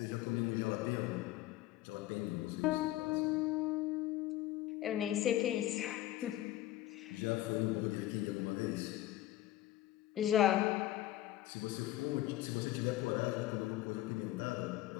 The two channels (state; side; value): quieter; right; 14.7 dB